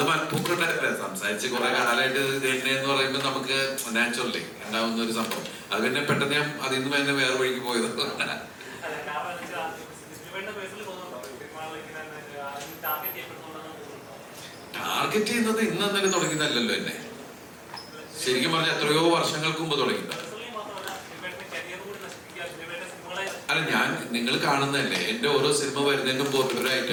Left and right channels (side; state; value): both; identical; correlation 1.00